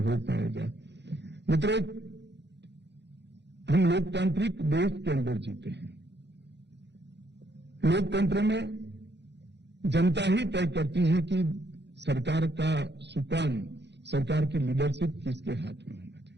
पाएगा। मित्रों, हम लोकतांत्रिक देश के अंदर जीते हैं। लोकतंत्र में जनता ही तय करती है कि सरकार का सुकान, सरकार की लीडरशिप किसके हाथ में होना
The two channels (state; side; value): late; left; 0.50 ms